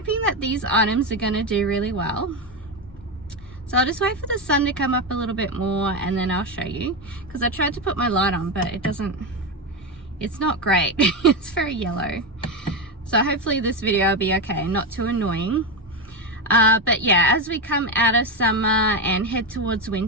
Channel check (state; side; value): normal; both; correlation 0.13